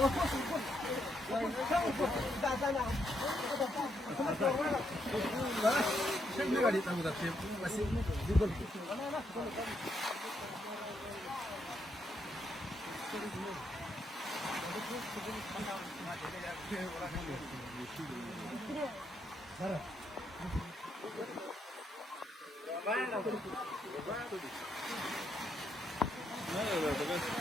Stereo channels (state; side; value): normal; both; correlation 0.77